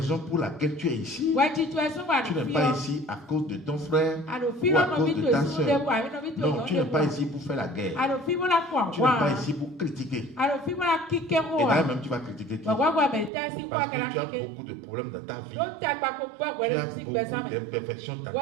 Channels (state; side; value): drops out; left; at 13.3 s